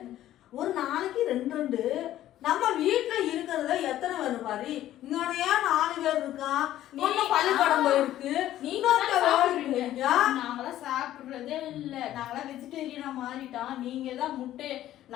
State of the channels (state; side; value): quieter; right; 13.2 dB